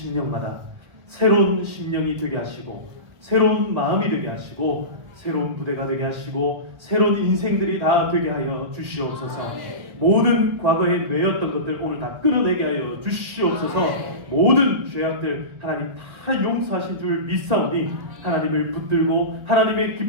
새로운 심령이 되게 하시고 새로운 마음이 되게 하시고 새로운 부대가 되게 하시고 새로운 인생들이 다 되게 하여 주시옵소서. 모든 과거에 매였던 것들 오늘 다 끊어내게 하여 주시옵소서. 모든 죄악들 하나님 다 용서하신 줄 믿사오니 하나님을 붙들고 하나님의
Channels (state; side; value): late; left; 1.4 ms